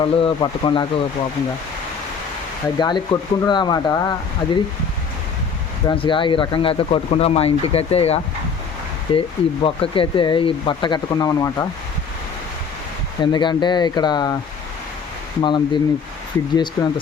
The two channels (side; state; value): right; quieter; 5.9 dB